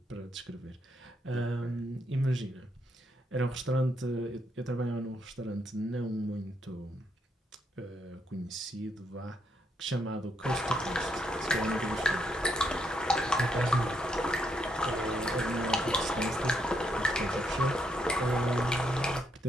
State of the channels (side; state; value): both; normal; correlation 0.77